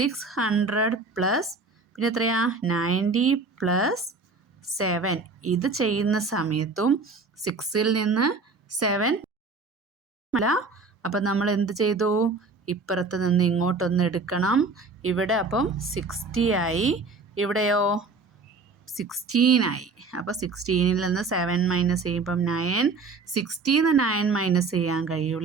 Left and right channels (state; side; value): quieter; left; 4.0 dB